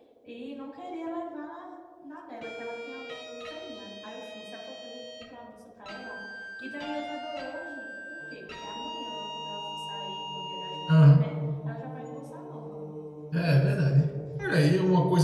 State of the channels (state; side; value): identical; both; correlation 1.00